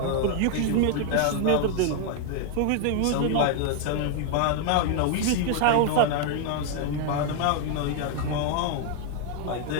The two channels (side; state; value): both; different; correlation 0.00